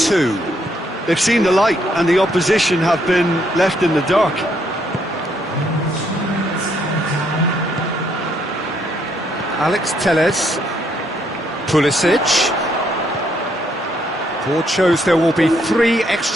They've seen the light and the opposition have been left in the dark. Alex Telles, Pulisic. Board shows there will be 3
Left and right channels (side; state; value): both; normal; correlation 0.72